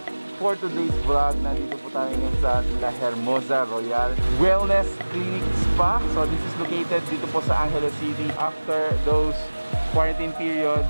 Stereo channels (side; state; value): both; inverted; correlation -1.00